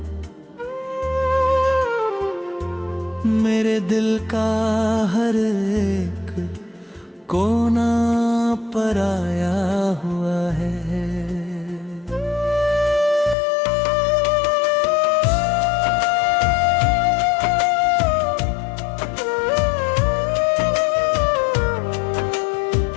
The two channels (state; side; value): drops out; right; at 13.4 s